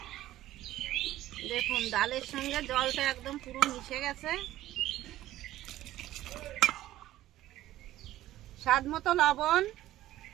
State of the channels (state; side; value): quieter; left; 14.6 dB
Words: দেখুন, ডালের সঙ্গে জলটা একদম পুরো মিশে গেছে। স্বাদ মতো লবণ,